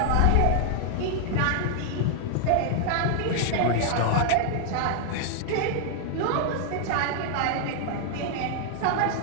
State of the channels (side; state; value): both; different; correlation 0.00